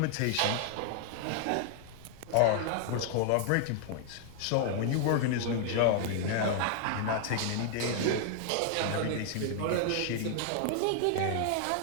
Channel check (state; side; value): different; both; correlation 0.00